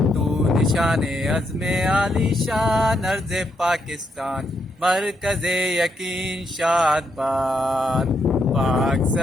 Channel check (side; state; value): both; normal; correlation 0.78